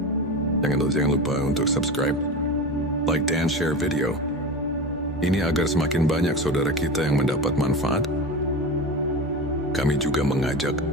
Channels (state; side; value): normal; both; correlation 0.26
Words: jangan lupa untuk subscribe, like, dan share video ini agar semakin banyak saudara kita yang mendapat manfaat. Kami juga mengajak